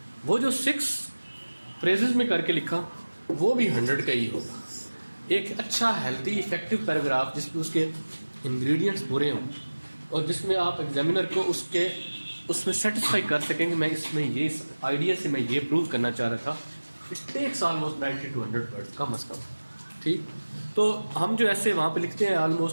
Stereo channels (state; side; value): inverted; both; correlation -1.00